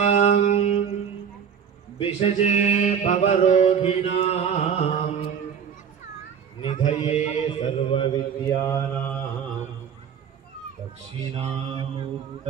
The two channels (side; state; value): left; quieter; 7.5 dB